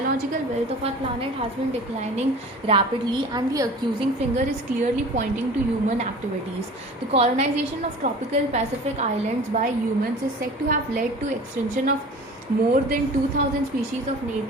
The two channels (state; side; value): normal; both; correlation 0.40